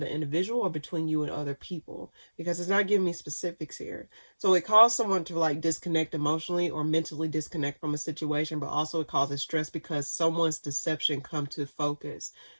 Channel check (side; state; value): both; inverted; correlation -1.00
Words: individual, or between you and other people, because it's not giving me specifics here. So it caused someone to like disconnect emotionally or mentally disconnect from a situation, but also it causes stress because someone's deception come to focus.